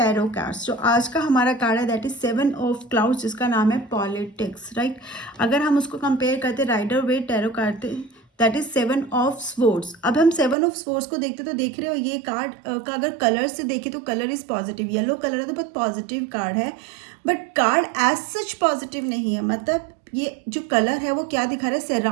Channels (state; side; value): drops out; left; at 10.6 s